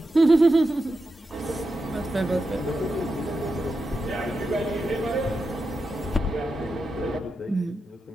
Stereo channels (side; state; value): both; normal; correlation 0.89